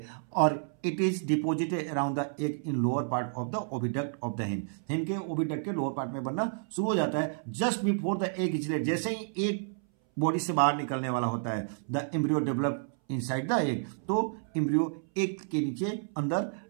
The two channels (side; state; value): left; silent; 57 dB below the other